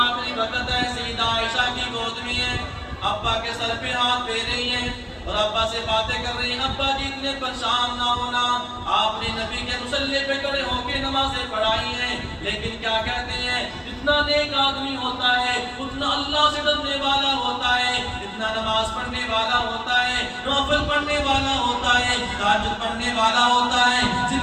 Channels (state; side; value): identical; both; correlation 1.00